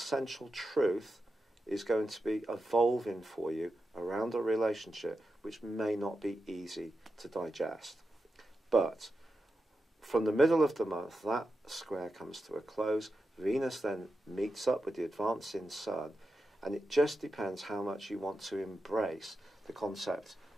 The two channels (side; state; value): both; normal; correlation 0.89